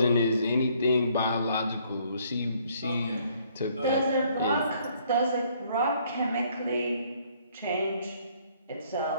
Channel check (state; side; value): inverted; both; correlation -0.64